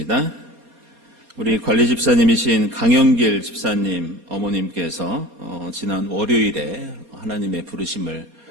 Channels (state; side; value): late; left; 4.2 ms